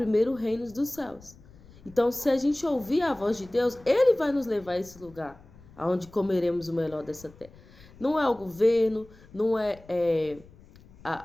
o reino dos céus. Então, se a gente ouvir a voz de Deus, Ele vai nos levar a esse lugar, onde comeremos o melhor dessa terra. Não é o governo, não é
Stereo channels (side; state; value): left; noise; rumble, 23 dB below the sound